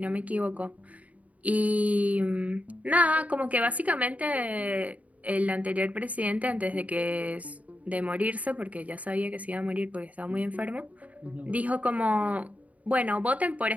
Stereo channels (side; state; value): left; late; 0.070 ms